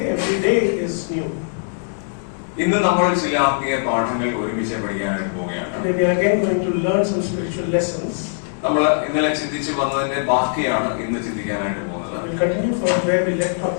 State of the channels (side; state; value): right; silent; digital silence